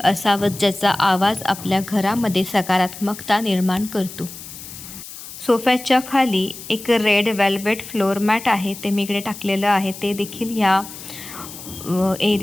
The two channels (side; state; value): left; noise; hiss, 13 dB below the sound